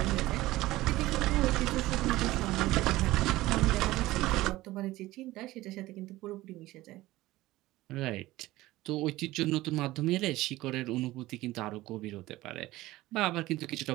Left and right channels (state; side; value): quieter; left; 17.5 dB